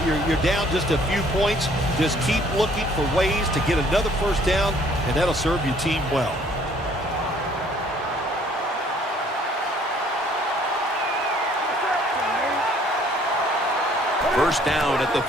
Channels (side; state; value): both; normal; correlation 0.59